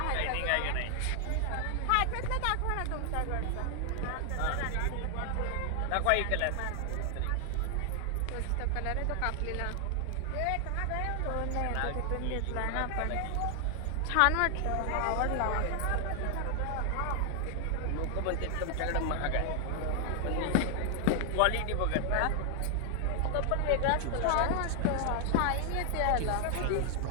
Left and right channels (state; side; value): different; both; correlation 0.00